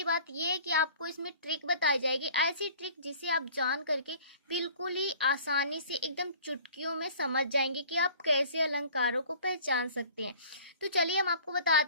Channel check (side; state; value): both; inverted; correlation -0.48